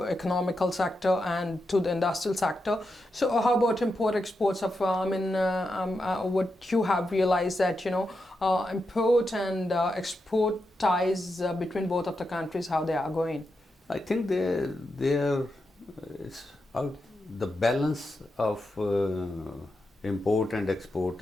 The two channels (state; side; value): normal; both; correlation 0.87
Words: economical sector and to the industrial sector. So how about import exports of, what you have realized that, import and export ties between both of the countries, how they are going? I think they are, it's out. The balance of import and export